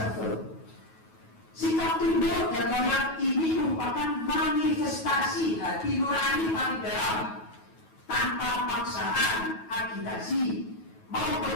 Sikap tunduk dan menolak ini merupakan manifestasi hati nurani paling dalam, tanpa paksaan, agitasi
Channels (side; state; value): right; late; 9.3 ms